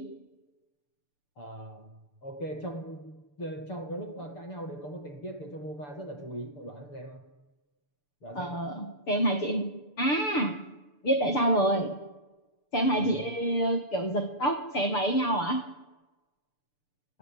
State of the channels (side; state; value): right; late; 6.8 ms